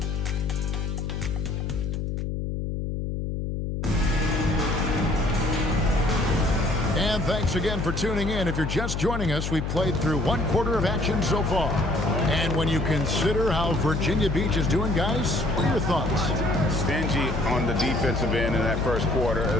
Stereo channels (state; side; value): noise; left; hum, 3 dB below the sound